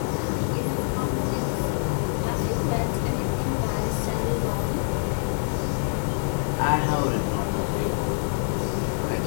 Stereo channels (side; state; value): right; silent; digital silence